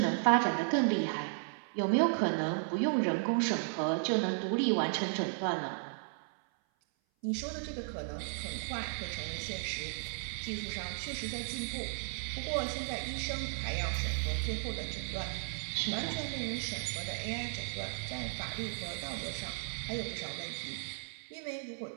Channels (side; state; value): left; silent; 54 dB below the other